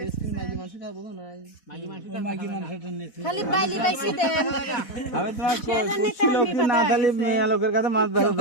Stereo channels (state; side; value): late; right; 4.1 ms